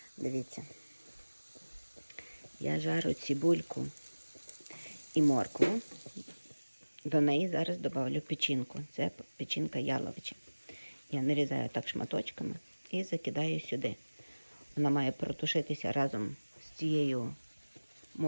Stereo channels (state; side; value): inverted; both; correlation -1.00